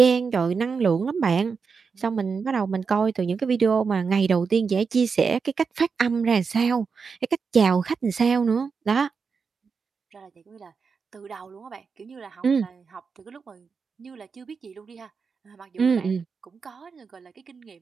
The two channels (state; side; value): quieter; left; 5.4 dB